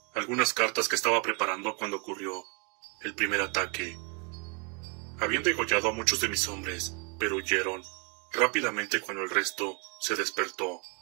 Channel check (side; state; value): left; quieter; 32.7 dB